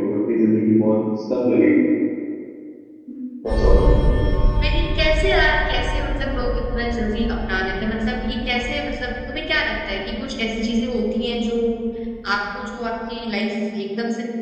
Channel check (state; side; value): identical; both; correlation 1.00